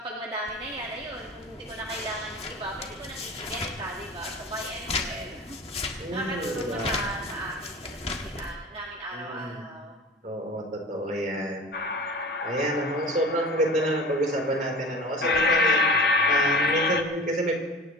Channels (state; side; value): normal; both; correlation 0.37